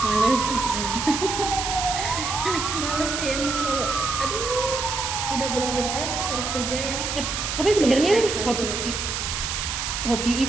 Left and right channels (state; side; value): noise; right; hiss, 3 dB below the sound